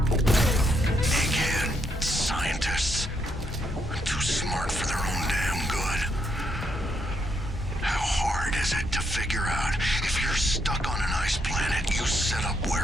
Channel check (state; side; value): normal; both; correlation 0.77